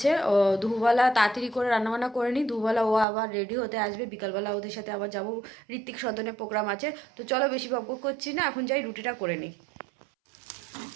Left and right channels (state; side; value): drops out; left; at 3.1 s